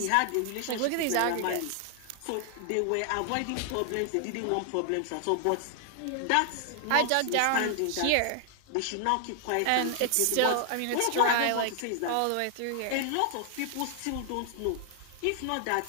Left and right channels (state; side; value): different; both; correlation 0.00